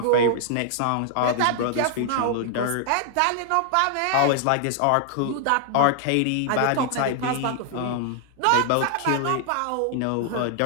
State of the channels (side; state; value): both; different; correlation 0.00